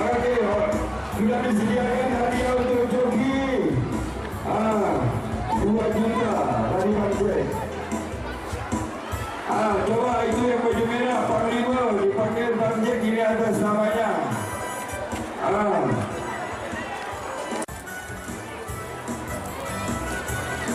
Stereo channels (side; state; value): both; identical; correlation 1.00